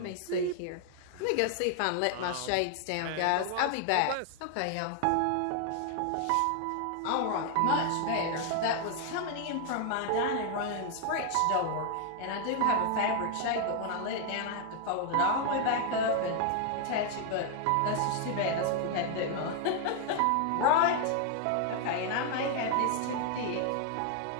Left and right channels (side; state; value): both; different; correlation 0.00